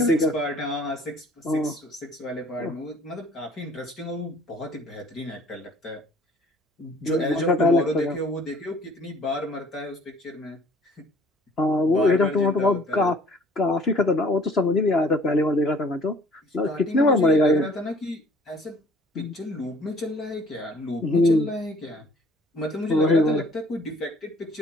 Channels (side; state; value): both; normal; correlation 0.55